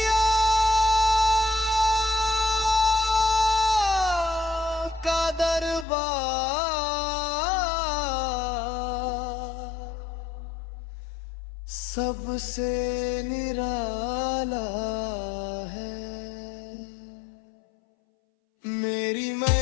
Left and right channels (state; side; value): drops out; right; at 5.9 s